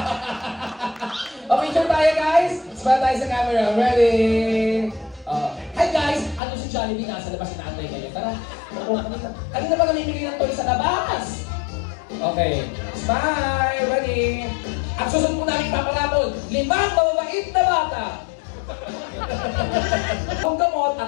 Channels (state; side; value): drops out; right; at 6.4 s